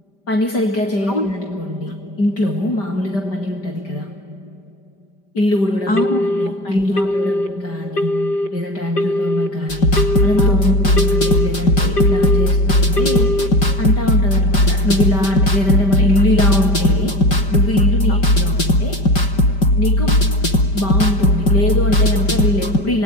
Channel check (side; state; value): right; late; 5.1 ms